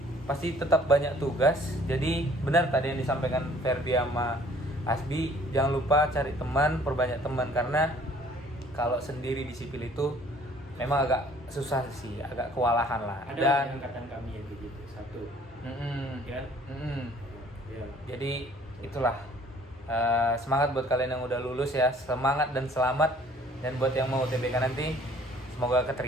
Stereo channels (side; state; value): both; normal; correlation 0.56